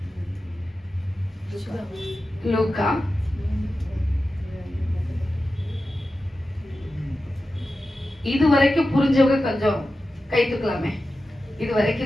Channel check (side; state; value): both; normal; correlation 0.93